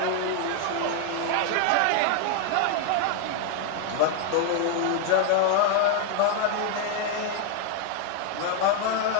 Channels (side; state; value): both; different; correlation 0.00